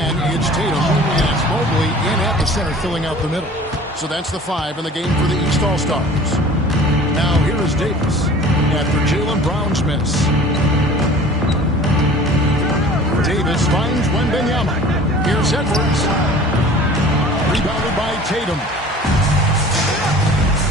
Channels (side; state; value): both; normal; correlation 0.45